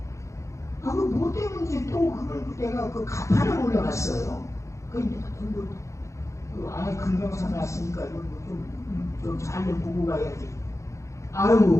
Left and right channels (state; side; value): late; right; 0.15 ms